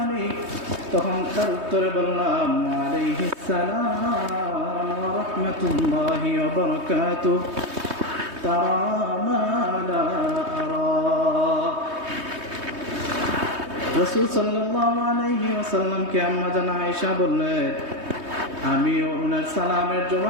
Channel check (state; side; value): late; left; 3.2 ms